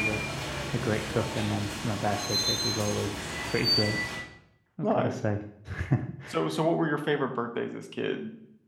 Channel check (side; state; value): both; identical; correlation 1.00